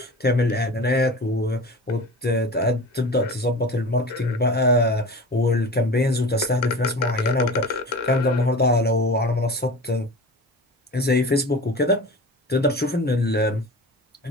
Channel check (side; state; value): both; normal; correlation 0.35